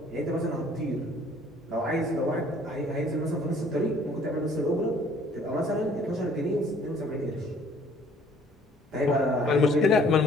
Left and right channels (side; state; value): both; normal; correlation 0.58